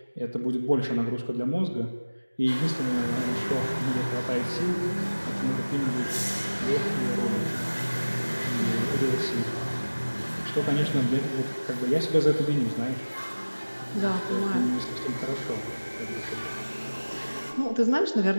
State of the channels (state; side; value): inverted; both; correlation -1.00